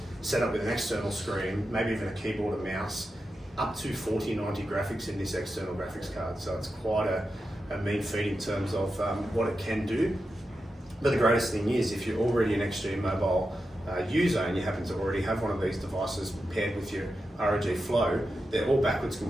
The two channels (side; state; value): both; normal; correlation 0.89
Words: set up with an external screen, maybe even a keyboard and mouse, up to 4090 graphics in this external graphics card. So it's quite a mean feat in terms of what it can do. But the greatest thing is, if you're already an Extreme Mobile user and you happen to already have one of these devices paired with your ROG Flow, they're all backwards